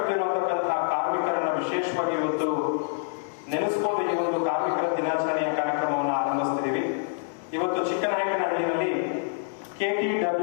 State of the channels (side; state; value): right; silent; digital silence